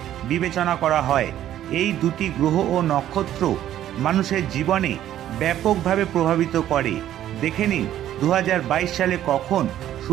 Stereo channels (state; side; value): quieter; left; 11.9 dB